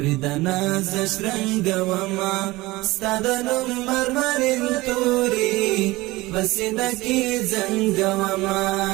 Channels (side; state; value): left; quieter; 20.2 dB